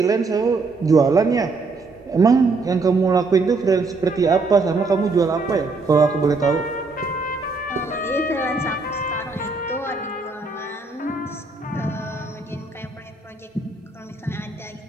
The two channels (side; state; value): left; quieter; 3.8 dB